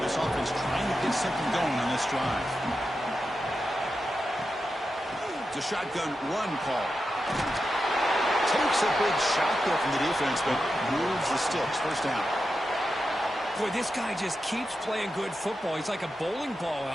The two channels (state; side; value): normal; both; correlation 0.89